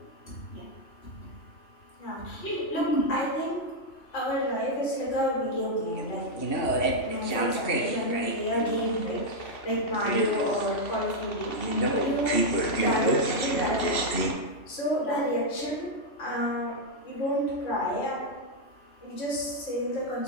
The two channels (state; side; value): late; right; 2.7 ms